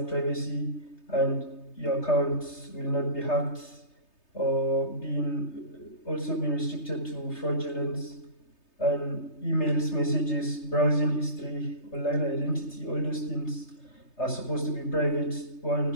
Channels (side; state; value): right; late; 3.3 ms